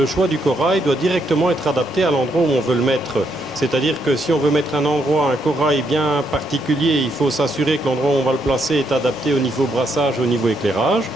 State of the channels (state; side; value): normal; both; correlation 0.76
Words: choix du corail doit directement être adapté à l'endroit où on veut le mettre. C'est-à-dire que si on veut mettre un corail bien particulier, il faut s'assurer que l'endroit où on va le placer est adapté au niveau brassage, au niveau éclairage.